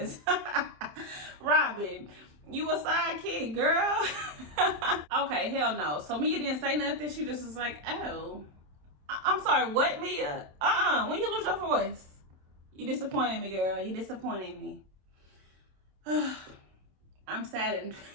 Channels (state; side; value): late; left; 27 ms